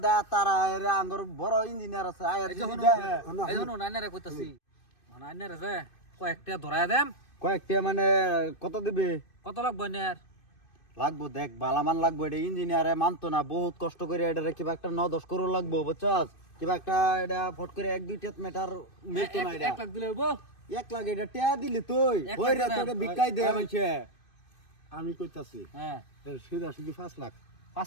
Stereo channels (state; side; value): late; right; 2.6 ms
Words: দেয় তারা এর আঙ্গর বড় ইঞ্জিনিয়ার আছে আয় এই যদি যখন দেয়, এই যখন আইনারে কইতাছি মানে আইনারে যে কয়েকটা ধরায় দেম কয়েকটা মানে কত দিবে কত লাগবে আইনার লাগবো দেখ বালামান লাগবো এটা ইঞ্জিনিয়ারে মানতো না বহুত কষ্ট করে এটা কিবা একটা 9-10 করোড় লাগবো বুঝছস কিবা একটা এটা ফট করে 1-2 মিটার মিলতো না এটা 1 লাখ দিলে হইবো 1 লাখ এটা টিয়া দিলি তুই 1 ওই রে লাখ তোকে বিকাই দে আমাকে আমি কইতাছি হ্যাঁ সিধা সিধি 5 লাখ